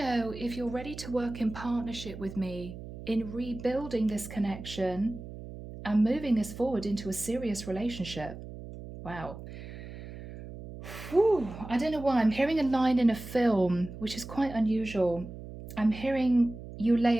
if you're ready to work in partnership with me in rebuilding this connection and moving this forward into a serious relationship. Wow. Whew. I don't know why. I'm hearing a line in a film, which is quite unusual. I'm hearing you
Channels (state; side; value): noise; right; hum, 12 dB below the sound